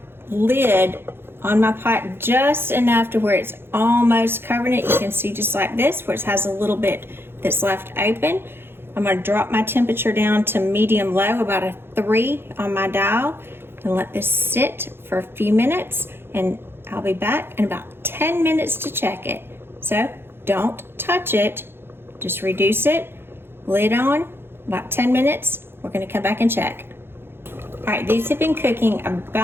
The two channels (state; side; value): late; left; 0.11 ms